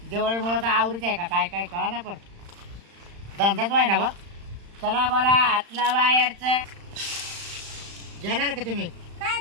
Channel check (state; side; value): late; left; 35 ms